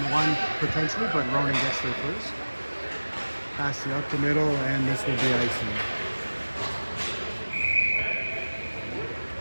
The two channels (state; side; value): inverted; both; correlation -1.00